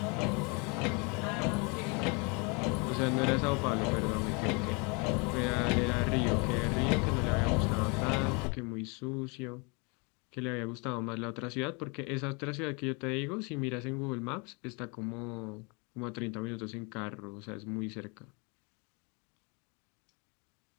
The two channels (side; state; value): right; quieter; 31.5 dB